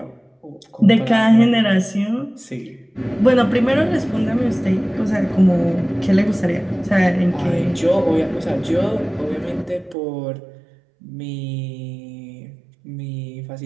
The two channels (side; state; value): left; drops out; at 10.0 s